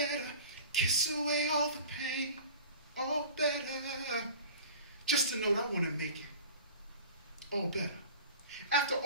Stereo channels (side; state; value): both; inverted; correlation -0.42